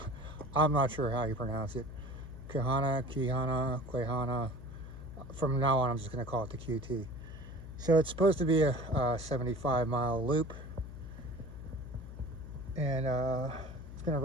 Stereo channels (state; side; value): noise; left; hum, 12 dB below the sound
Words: I'm not sure how you pronounce it. Quehanna. From now on, I'm just going to call it the QT. So it's supposed to be a 75-mile loop. And it's going to